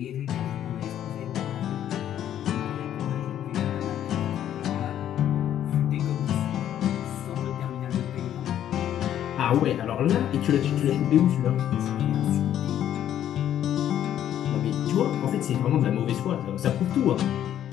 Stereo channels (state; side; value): quieter; right; 10.9 dB